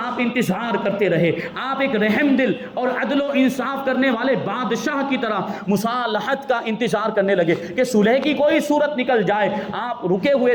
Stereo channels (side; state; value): both; identical; correlation 1.00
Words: انتظار کرتے رہے. آپ ایک رحم دل اور عدل و انصاف کرنے والے بادشاہ کی طرح مصالحت کا انتظار کرنے لگے کہ صلح کی کوئی صورت نکل جائے. آپ رکے